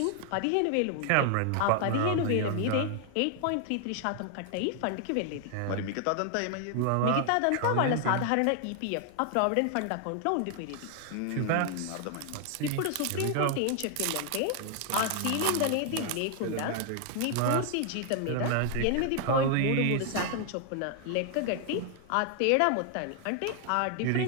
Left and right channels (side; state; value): both; different; correlation 0.00